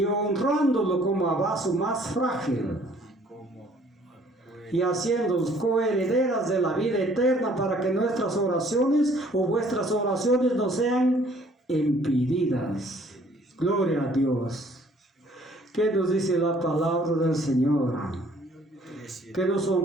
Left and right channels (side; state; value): both; normal; correlation 0.58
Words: honrándolo como a vaso más frágil y haciéndolos coherederas de la vida eterna para que nuestras oraciones o vuestras oraciones no sean impedidas. Gloria a Dios. ¿Qué nos dice la palabra del Señor? Que nos